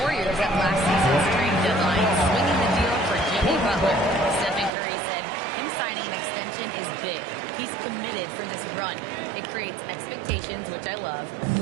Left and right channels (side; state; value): left; drops out; at 4.7 s